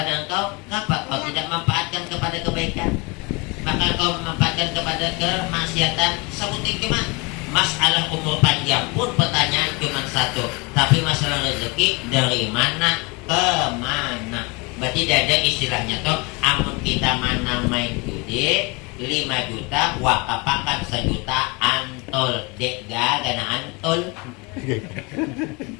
engkau, kenapa kau tidak manfaatkan kepada kebaikan, maka kau memanfaatkan kepada kemaksiatan? Sebutin cuma. Masalah umur panjang pun pertanyaan cuma satu, tapi masalah rezeki dari mana ke mana. Berarti tidak ada istilahnya toh, amun kita mana main judi 5 juta wakapakan 1 juta antol dek gana antol.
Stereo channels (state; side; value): quieter; right; 28.0 dB